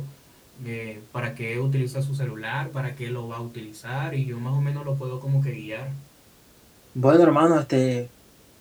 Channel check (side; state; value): both; identical; correlation 1.00